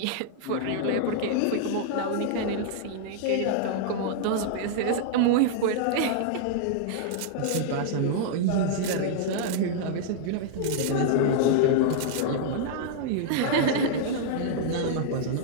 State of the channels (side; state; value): both; different; correlation -0.01